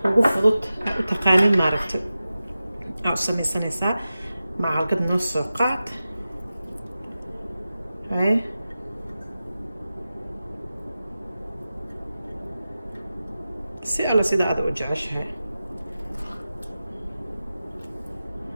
ugu fudud aad u taqaanin ma aragti aad u samaysanaysaa macalgad noo soo qaad si alla sida aad u jeceshahay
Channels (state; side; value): inverted; both; correlation -0.94